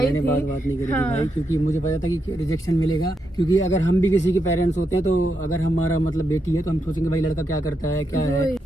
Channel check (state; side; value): normal; both; correlation 0.83